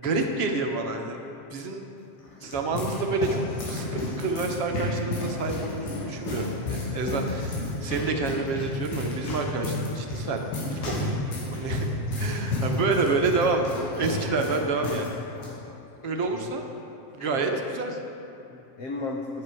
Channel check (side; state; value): right; late; 7.4 ms